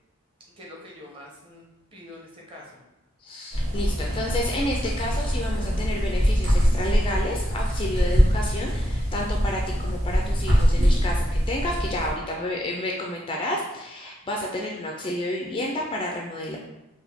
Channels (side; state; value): both; normal; correlation 0.81